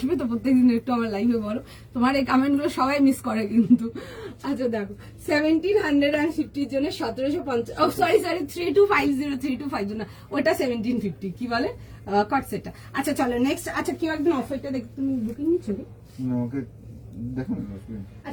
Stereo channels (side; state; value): both; identical; correlation 1.00